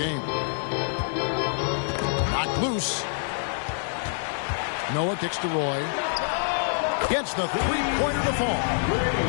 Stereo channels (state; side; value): silent; right; 61 dB below the other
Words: Knocked loose. Noah kicks to Roy. Gets the 3-pointer to fall.